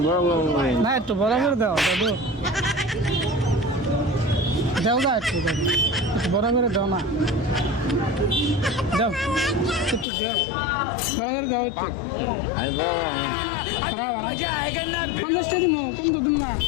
না একটু বড় করে দাও দাদু, দাও দা একটু দাদু, একটু বড় করে দাও না, দাও একটু দাও, বড় করে দাও একটু। 50 টাকা দিবো, কম তো দিন না।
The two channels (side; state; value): right; drops out; at 10.1 s